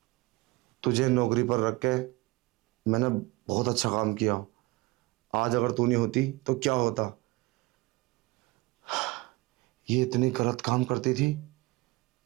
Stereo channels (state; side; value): quieter; left; 22.3 dB